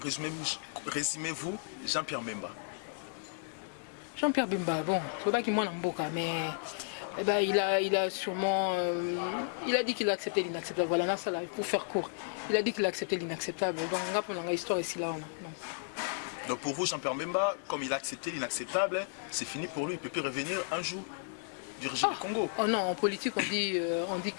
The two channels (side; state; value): right; silent; digital silence